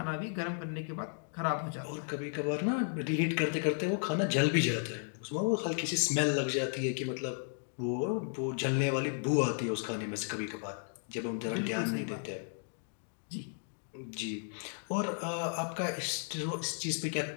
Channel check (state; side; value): silent; right; 55 dB below the other